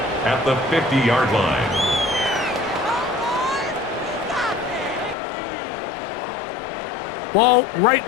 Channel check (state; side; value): drops out; right; at 5.2 s